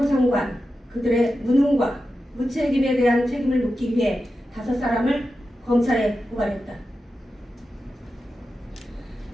장관, 그들의 무능과 무책임에 대한 책임을 묻기 위해 5사람을 검찰에 고발했다.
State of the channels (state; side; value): normal; both; correlation 0.91